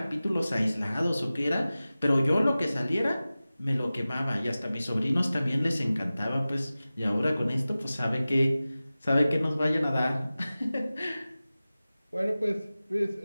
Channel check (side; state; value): both; inverted; correlation -0.96